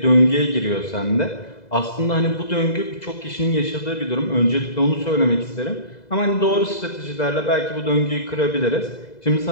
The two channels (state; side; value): late; right; 2.0 ms